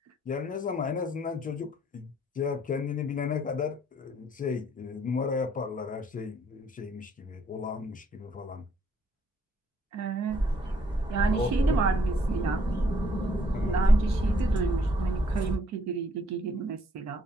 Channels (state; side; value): normal; both; correlation 0.66